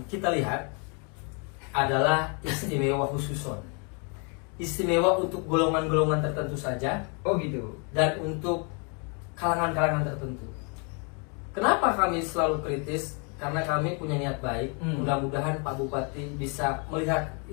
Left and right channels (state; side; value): quieter; right; 36.1 dB